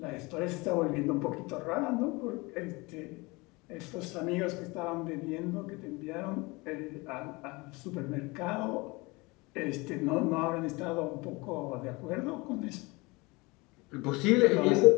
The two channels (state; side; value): quieter; right; 24.8 dB